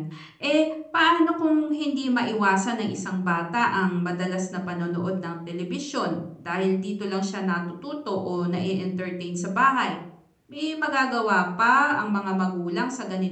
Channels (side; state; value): both; identical; correlation 1.00